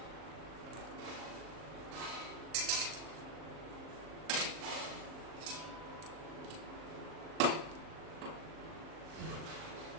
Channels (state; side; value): late; left; 38 ms